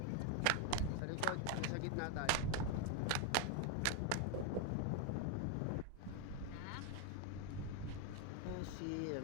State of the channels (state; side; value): different; both; correlation 0.01